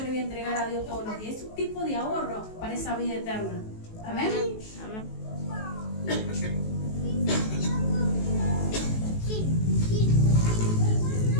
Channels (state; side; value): late; right; 19 ms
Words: le voy a entregar a Dios todos los días, es un tipo de ahorro para esa vida eterna. Amén. Amén.